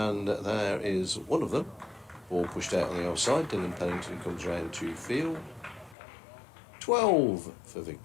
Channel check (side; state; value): right; drops out; at 6.0 s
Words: there is one of them. Ball pushed out on the offside. Dylan Pennington comes round to field. 12 for